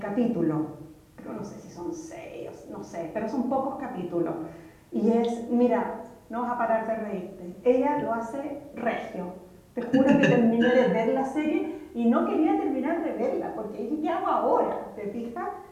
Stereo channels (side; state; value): both; identical; correlation 1.00